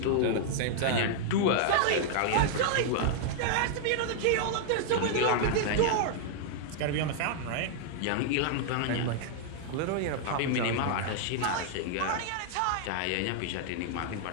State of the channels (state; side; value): different; both; correlation -0.01